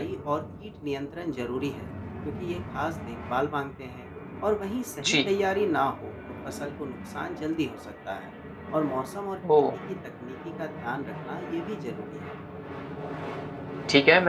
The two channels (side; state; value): both; identical; correlation 1.00